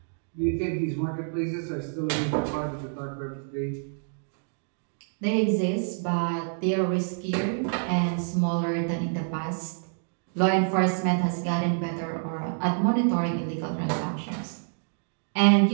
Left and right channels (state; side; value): silent; left; digital silence